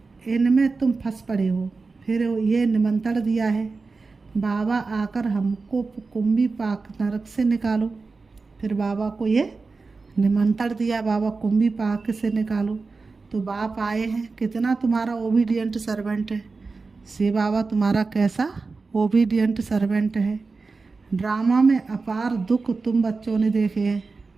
इनमें तुम फंस पड़े हो। फिर ये निमंत्रण दिया है बाबा आकर हमको कुंभी पाक नरक से निकालो। फिर बाबा को ये निमंत्रण दिया, बाबा कुंभी पाक से निकालो। तो बाप आए हैं, कितना तुम्हारा ओबीडियंट सर्वेंट है। शिव बाबा तुम्हारा कैसा ओबीडियंट सर्वेंट है। ड्रामा में अपार दुख तुम बच्चों ने देखे हैं।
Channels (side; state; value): left; quieter; 4.1 dB